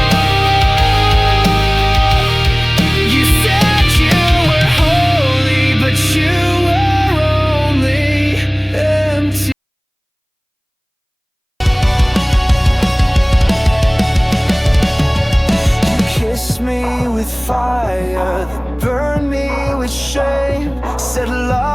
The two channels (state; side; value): identical; both; correlation 1.00